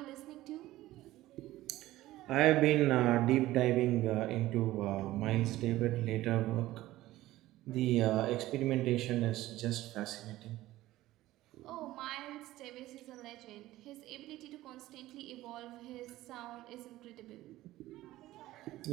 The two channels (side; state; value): left; quieter; 16.2 dB